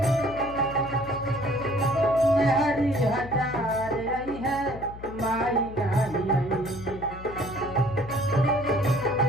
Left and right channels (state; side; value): noise; left; hum, 14 dB below the sound